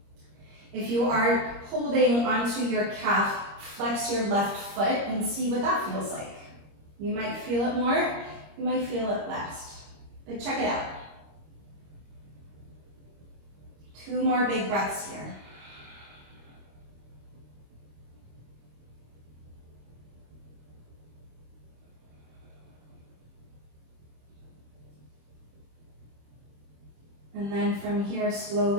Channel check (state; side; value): late; left; 25 ms